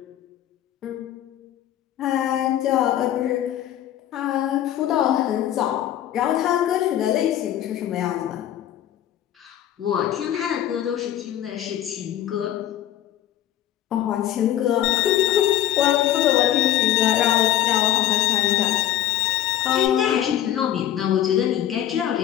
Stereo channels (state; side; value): quieter; right; 11.9 dB